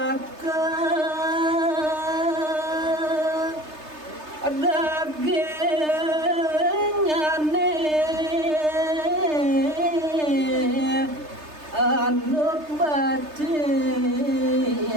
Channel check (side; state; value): left; late; 3.3 ms